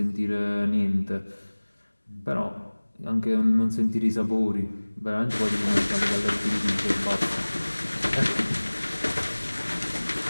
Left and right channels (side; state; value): both; inverted; correlation -1.00